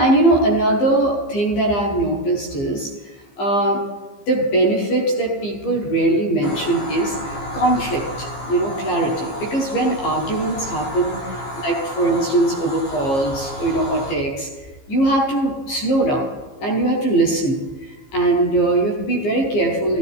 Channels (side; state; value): right; late; 15 ms